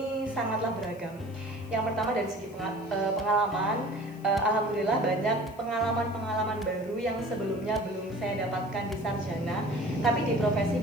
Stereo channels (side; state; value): left; noise; hiss, 26 dB below the sound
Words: sangatlah beragam. Yang pertama dari segi pengalaman, alhamdulillah banyak pengalaman-pengalaman baru yang sebelumnya belum saya dapatkan di sarjana, tapi di profesi